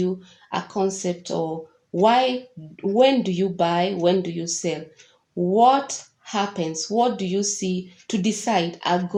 a concept of when do you buy, when do you sell? What happens? What do you see to decide I'm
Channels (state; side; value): identical; both; correlation 1.00